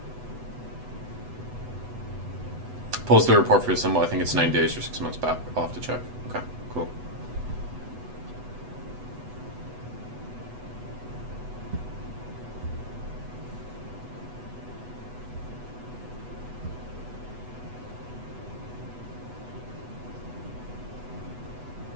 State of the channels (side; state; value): left; late; 8.1 ms